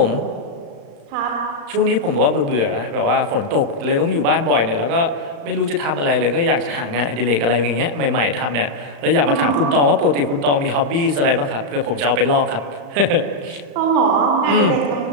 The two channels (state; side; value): late; left; 35 ms